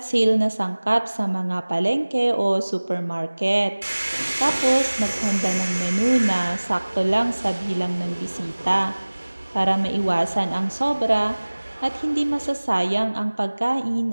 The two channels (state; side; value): inverted; both; correlation -1.00